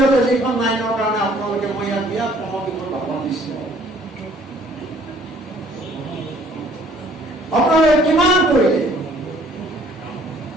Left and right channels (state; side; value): normal; both; correlation 0.58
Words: যিখন আইনৰ কাৰণে আপোনালোকে মই ইয়াত বিৰাট সমবিষয় ভাষণ দিছো, আপোনালোকে কিমান কৰিলে